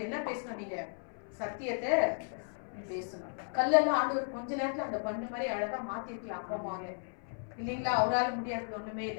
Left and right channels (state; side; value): silent; right; 55 dB below the other